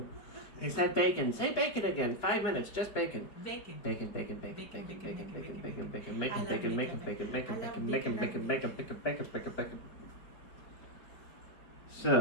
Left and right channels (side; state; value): right; late; 4.8 ms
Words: He said bacon. Say bacon again. 5 minutes, just bacon. Bacon. Bacon, bacon, bacon, bacon, bacon, bacon, bacon, bacon, bacon, bacon, I love bacon, bacon. bacon, bacon, I love bacon, bacon. bacon, bacon, bacon, bacon, bacon, bacon.